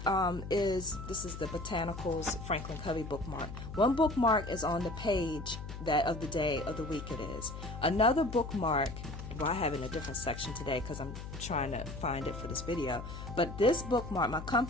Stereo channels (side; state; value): left; noise; hum, 9 dB below the sound